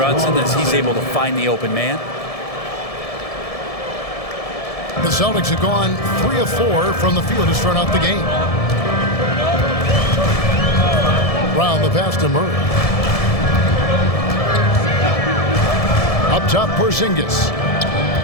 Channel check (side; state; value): right; late; 1.7 ms